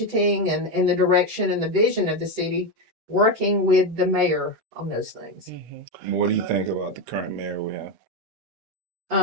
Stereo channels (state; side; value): late; left; 8.1 ms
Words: and in the direction and the vision of the city, working with the mayor on those things. What do you think about the current mayor we